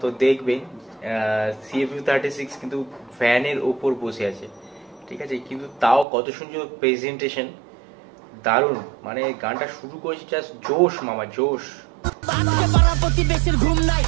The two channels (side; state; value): left; drops out; at 6.1 s